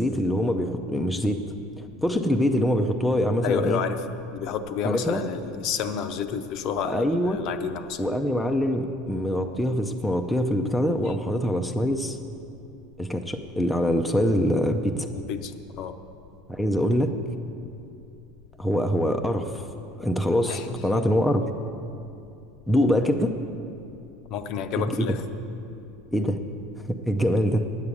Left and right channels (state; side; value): noise; left; rumble, 27 dB below the sound